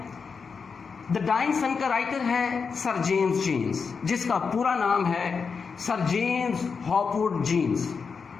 द डाइंग सन का राइटर है सर जेम्स जीन्स, जिसका पूरा नाम है सर जेम्स हॉपवुड जीन्स,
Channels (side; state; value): right; quieter; 5.5 dB